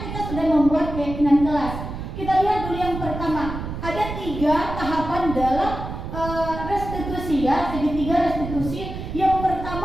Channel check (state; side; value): noise; right; rumble, 7 dB below the sound